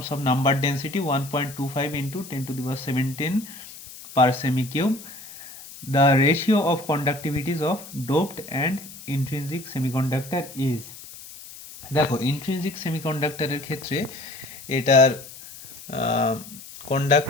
of number density 1.25 into 10 to the power 17 per semi-cube. The ratio of conductivities of doped and intrinsic semiconductor is, দেখো intrinsic সেমিকন্ডাক্টরের ক্ষেত্রে এটার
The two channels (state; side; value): noise; left; hiss, 16 dB below the sound